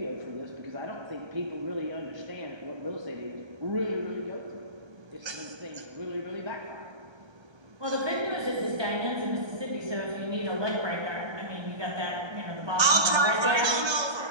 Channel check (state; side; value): late; left; 1.3 ms